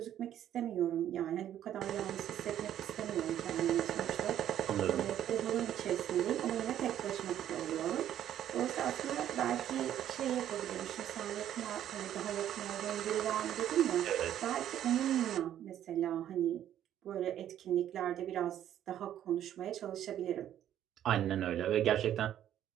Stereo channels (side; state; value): left; quieter; 11.1 dB